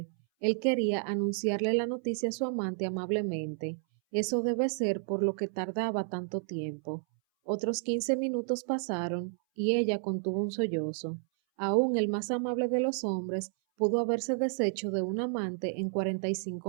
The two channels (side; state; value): left; silent; 57 dB below the other